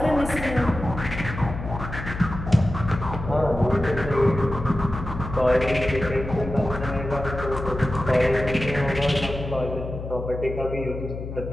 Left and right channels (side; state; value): left; noise; hum, 8 dB below the sound